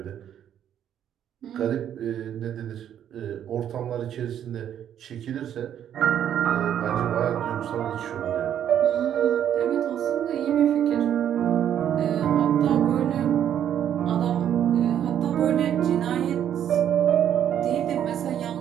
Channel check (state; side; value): quieter; left; 9.9 dB